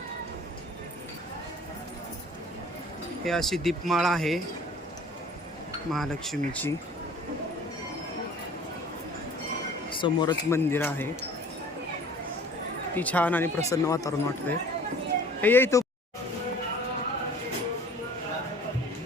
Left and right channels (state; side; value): normal; both; correlation 0.49